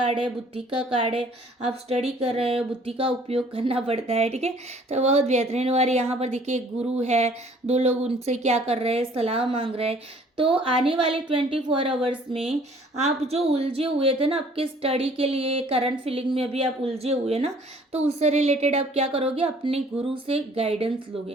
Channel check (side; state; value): both; normal; correlation 0.56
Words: है, बुद्धि का कार्ड है। आप स्टडी कर रहे हो, बुद्धि का उपयोग करना पड़ता है, ठीक है। तो बहुत बेहतरीन। और यहाँ पर देखिए एक गुरु है, 2 लोग उनसे क्या कर रहे हैं, सलाह मांग रहे हैं। तो आने वाले 24 आवर्स में आप जो उलझे हुए थे ना आपके स्टडी के लिए, करंट फीलिंग में अभी आप उलझे हुए ना, तो उससे रिलेटेड आप क्या करोगे, अपने गुरु से गाइडेंस